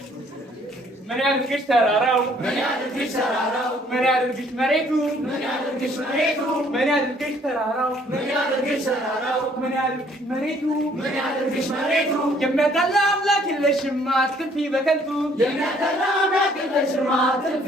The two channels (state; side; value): normal; both; correlation 0.62